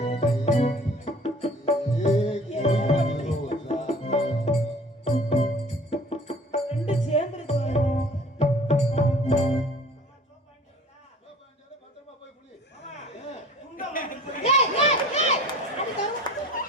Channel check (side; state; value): both; normal; correlation 0.47